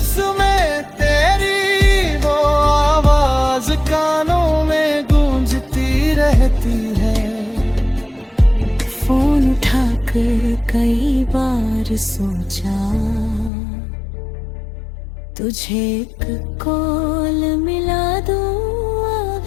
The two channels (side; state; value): right; drops out; at 13.5 s